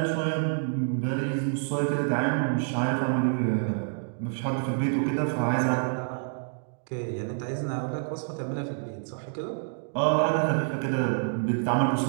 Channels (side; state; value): left; silent; digital silence